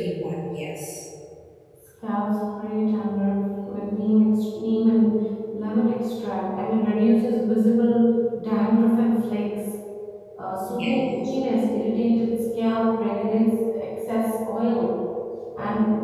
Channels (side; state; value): both; identical; correlation 1.00